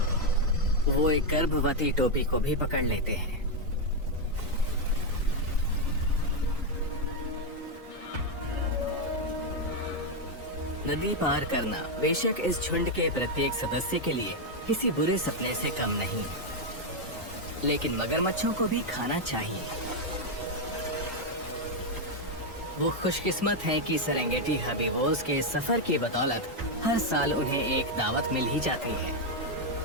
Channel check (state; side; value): normal; both; correlation 0.02